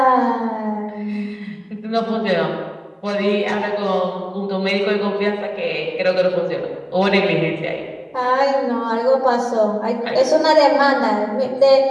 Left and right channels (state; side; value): identical; both; correlation 1.00